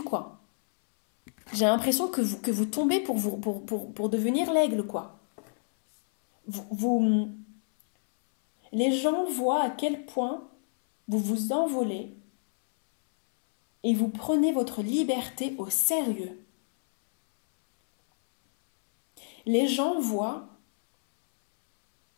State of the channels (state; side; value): silent; right; 59 dB below the other